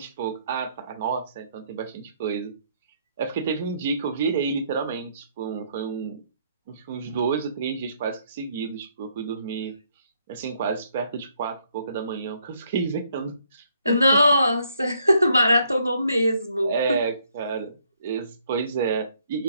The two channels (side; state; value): both; inverted; correlation -0.69